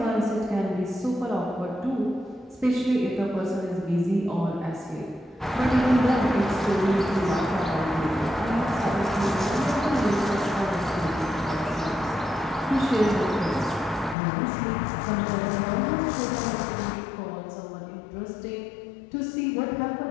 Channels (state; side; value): drops out; right; at 14.2 s